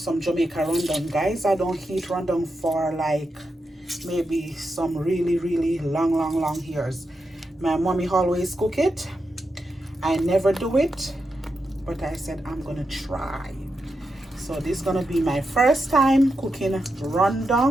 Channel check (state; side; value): normal; both; correlation 0.87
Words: Jamaica run dung, guys. I don't eat run dung for like maybe some really long years. My mommy always cook it. I never do it, but I said I'm gonna try. So this is gonna be my first time cooking run